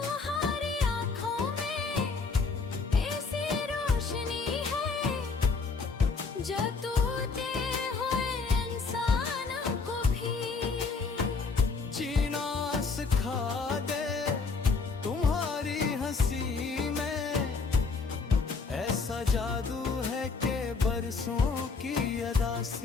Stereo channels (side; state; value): right; quieter; 4.5 dB